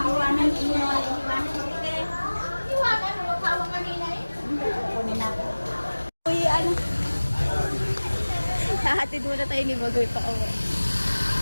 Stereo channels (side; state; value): both; inverted; correlation -1.00